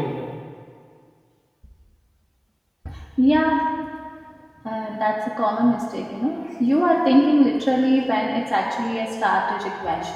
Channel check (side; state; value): both; identical; correlation 1.00